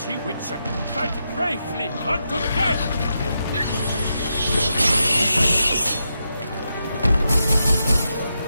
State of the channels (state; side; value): inverted; both; correlation -0.85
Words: ye, Witcher! Fight bravely unto death!